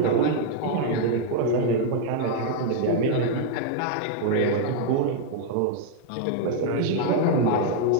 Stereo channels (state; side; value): different; both; correlation 0.00